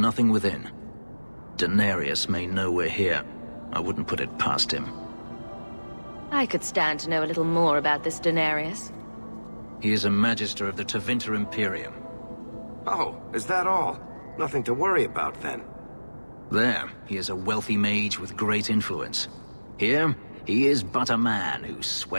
within. Daenerys may know we're here. I wouldn't put it past him. I could stand to know a little more about this Daenerys. He is a Magister of the Tevinter Imperium. Oh, is that all? Nothing to worry about then. There, he is a wealthy mage with great influence. Here, he is but a man who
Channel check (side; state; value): both; inverted; correlation -1.00